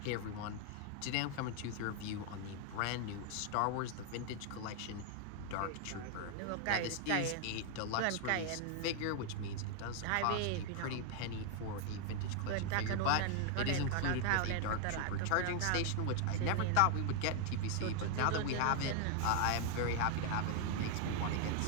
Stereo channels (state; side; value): different; both; correlation 0.00